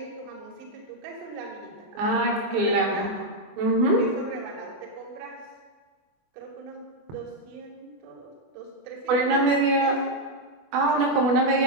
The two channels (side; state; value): left; late; 24 ms